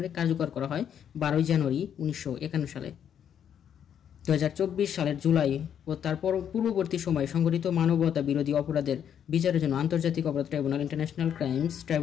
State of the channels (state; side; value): quieter; right; 8.9 dB